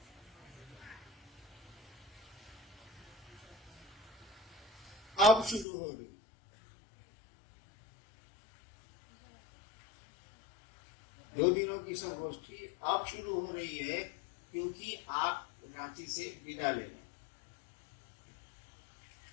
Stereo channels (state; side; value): drops out; right; at 5.7 s